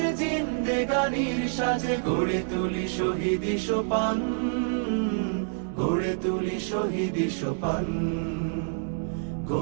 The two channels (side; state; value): left; silent; 60 dB below the other